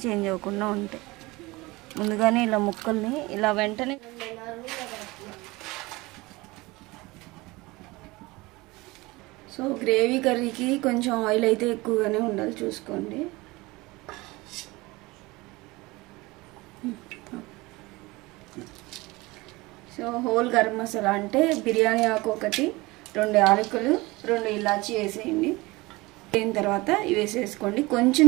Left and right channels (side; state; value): left; quieter; 22.1 dB